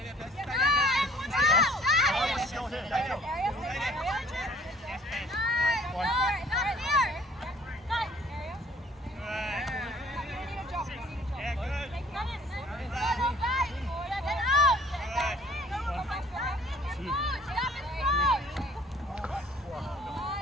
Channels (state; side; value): normal; both; correlation 0.55